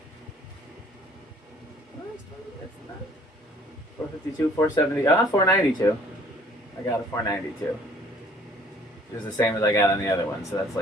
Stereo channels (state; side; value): normal; both; correlation 0.57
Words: 452, 470, 492. I got a 492. It was the same as I got on the other one, so that's